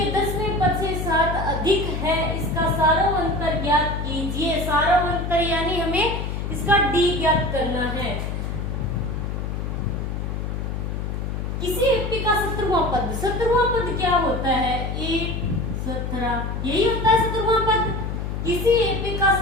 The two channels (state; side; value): noise; left; hum, 3 dB below the sound